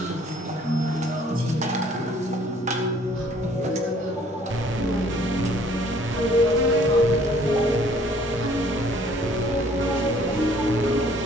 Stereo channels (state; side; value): normal; both; correlation 0.58